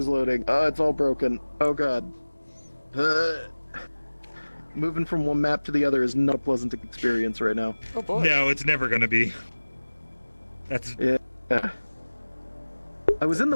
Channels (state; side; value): inverted; both; correlation -1.00